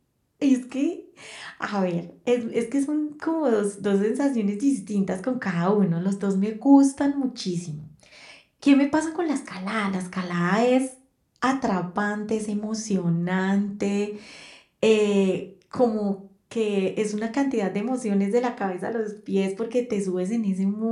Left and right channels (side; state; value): both; identical; correlation 1.00